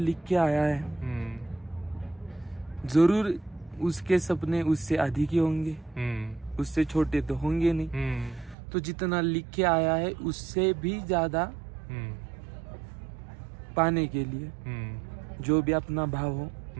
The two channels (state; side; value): drops out; left; at 8.6 s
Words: के आया है जरूर उसके सपने उससे अधिक ही होंगे, उससे छोटे तो होंगे नहीं। तो जितना लिख के आया है उससे भी ज्यादा पाने के लिए जो भी अपना भाव हो,